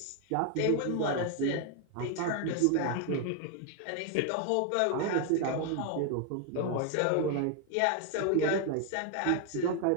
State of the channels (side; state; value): both; different; correlation 0.01